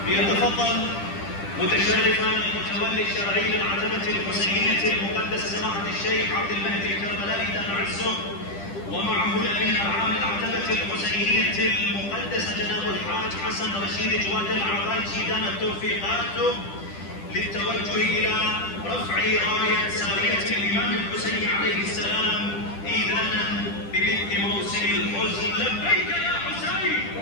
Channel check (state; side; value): late; right; 10 ms